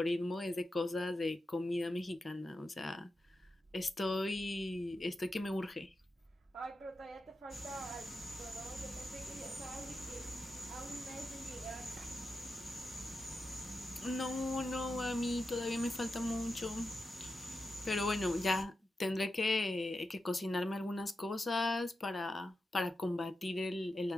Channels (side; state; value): both; normal; correlation 0.89